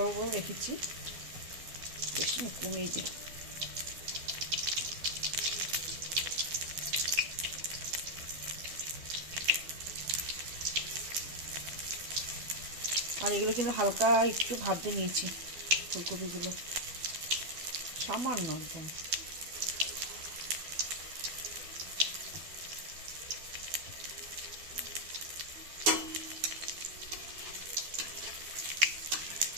বড় রেখেছি, বেশ না কমিয়ে দিই। আর এগুলো কিন্তু হালকা একটু ভাজতে নিয়েছি ফুলকপিগুলো, সামান্য একদম।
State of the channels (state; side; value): late; left; 12 ms